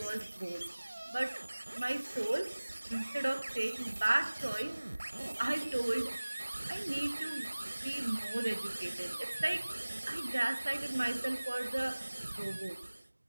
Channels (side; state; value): both; inverted; correlation -1.00